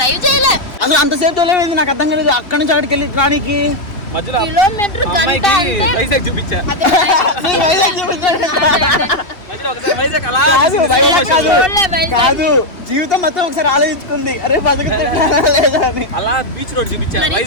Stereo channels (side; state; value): right; late; 2.8 ms